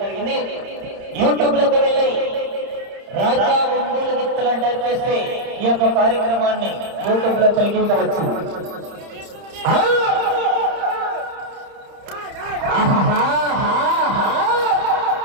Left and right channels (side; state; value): left; late; 30 ms